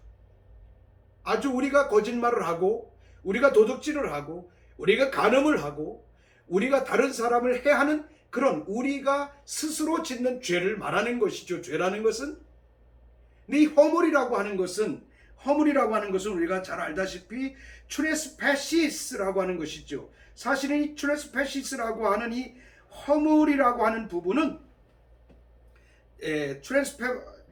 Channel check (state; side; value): identical; both; correlation 1.00